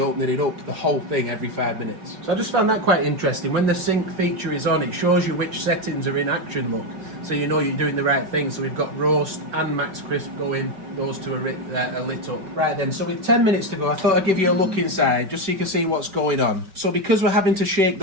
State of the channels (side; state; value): left; late; 5.2 ms